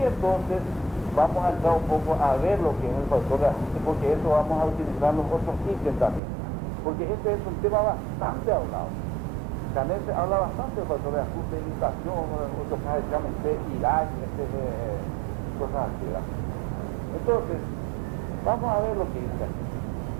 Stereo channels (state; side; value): drops out; left; at 6.2 s